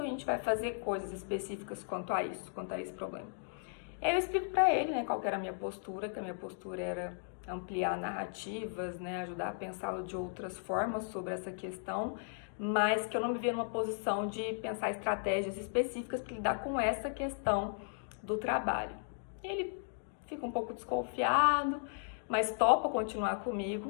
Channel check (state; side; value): silent; right; digital silence